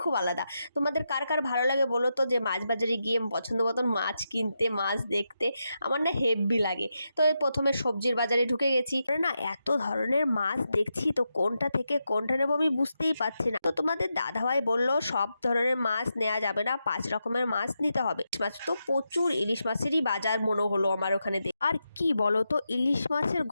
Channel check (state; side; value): inverted; both; correlation -0.86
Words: খুব আলাদা। তোমাদের কার কার ভালো লাগে বলো তো, যে মাছ বাজারে গিয়ে পছন্দ মতন মাছ কিনতে, মাছ দেখতে? আমার না হেব্বি লাগে। তো এই প্রথমে সবজির বাজারে ঢুকে গেছি, না এত ধরনের মাছ দেখছি, তো কোনটা থেকে কোনটা নেবো আমি বুঝতেই পারছি না। তো তোমাদের দাদাভাই বললো সব ধরনের মাছ নেওয়া যাবে না, 5 রকমের মাছ নিতে হবে। মাছ তো প্রচুর, ইলিশ মাছেরই বাজার মনে হলো আমার ওখানে। আর কি বলো তো, ইলিশ মাছের